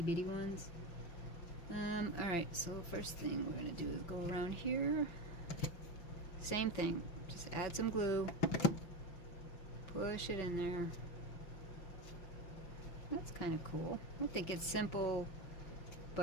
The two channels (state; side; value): late; right; 5.8 ms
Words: ones. Alright, so the first thing we're going to do is go around here. Same thing. Just add some glue. Push it in there. That's kind of cool. I think it's simple